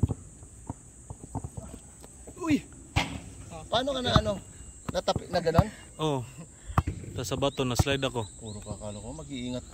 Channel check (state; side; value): identical; both; correlation 1.00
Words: Uy! Paano ka na ano? Natapik na gano'n? Oh. Tapos sa bato na slide ako. Puro kakalo ko, mag-iingat